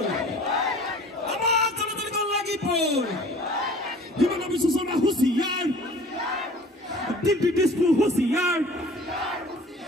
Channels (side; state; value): both; normal; correlation 0.47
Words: আমার জনতার লাগিবই হিমন্ত বিশ্ব শর্মা হুঁচিয়ার দিল্লী দিসপুর হুঁচিয়ার